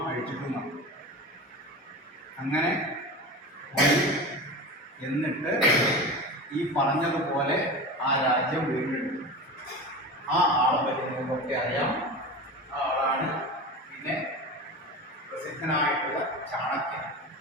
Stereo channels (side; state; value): both; normal; correlation 0.29